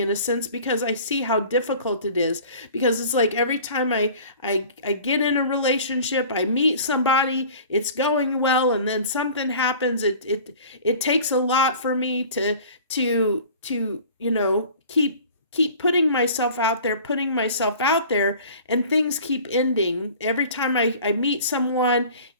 a sense, because I see how difficult it is. Because it's like every time I get in a relationship, I meet somebody, it's going well, and then something happens. It takes a lot for me to keep keep putting myself out there, and things keep ending. Every time I meet someone,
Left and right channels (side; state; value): both; inverted; correlation -0.44